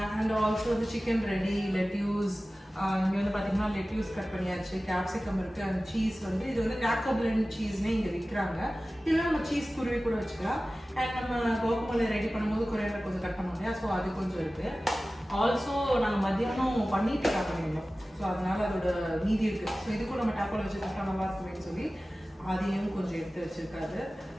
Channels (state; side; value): normal; both; correlation 0.96